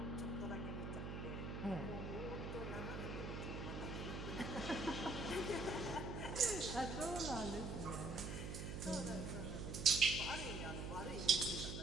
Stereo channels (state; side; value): noise; right; hum, 4 dB below the sound